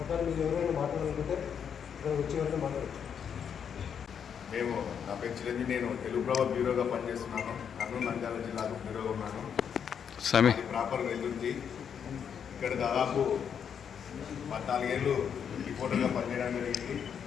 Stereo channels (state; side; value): quieter; right; 7.7 dB